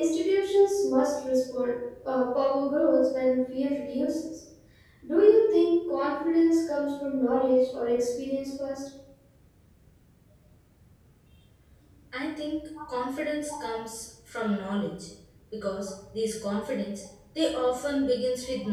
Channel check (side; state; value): both; identical; correlation 1.00